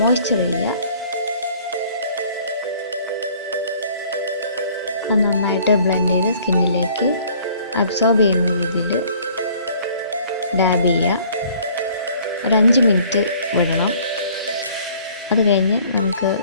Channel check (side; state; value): both; inverted; correlation -0.55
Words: മോയ്സ്ചർ ചെയ്യുക. അത് നന്നായിട്ട് ബ്ലെൻഡ് ചെയ്ത് സ്കിന്നിലേക്ക് അബ്സോർബ് ചെയ്യുന്ന രീതിയിൽ ഡാബ് ചെയ്യുക. ഒരു 5 മിനിറ്റ് വിടണം. അത് കഴിഞ്ഞ് നമുക്ക്